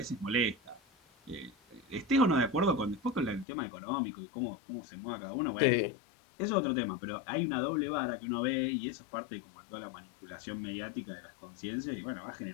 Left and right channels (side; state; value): right; drops out; at 3.5 s